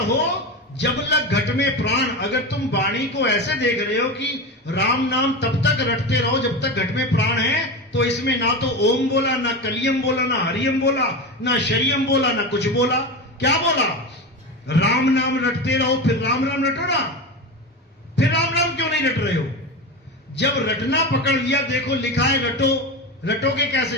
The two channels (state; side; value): normal; both; correlation 0.22